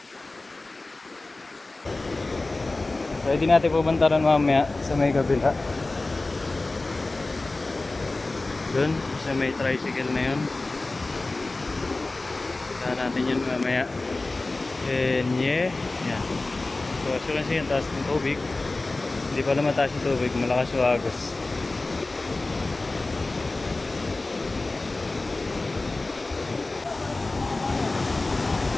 Pwede natin pupuntaran mamaya sa may kabila. Doon, sa may tricycle na yun. Punta natin yun mamaya. And yeah, yan. So as you can see, yung taas ng tubig. Hindi pala mataas yung tubig, malakas yung agos.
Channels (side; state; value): right; quieter; 3.2 dB